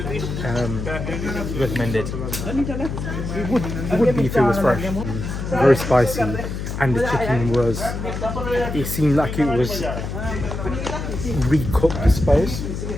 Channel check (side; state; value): left; noise; hum, 5 dB below the sound